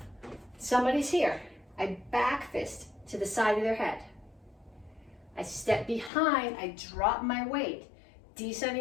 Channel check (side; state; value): right; drops out; at 6.1 s